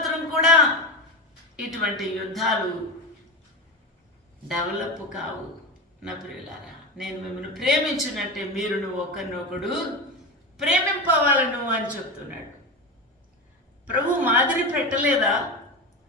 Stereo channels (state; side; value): normal; both; correlation 0.21